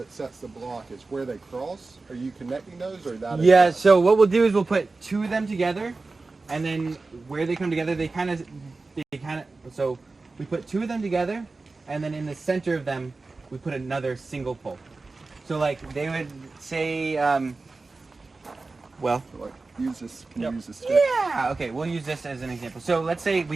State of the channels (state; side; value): quieter; left; 3.7 dB